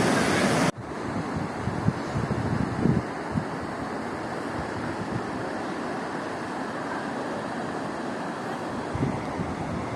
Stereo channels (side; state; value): both; identical; correlation 1.00